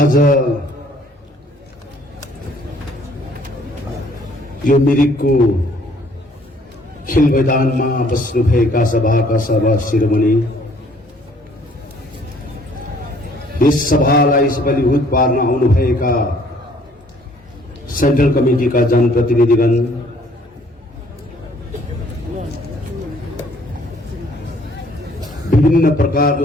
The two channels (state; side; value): normal; both; correlation 0.60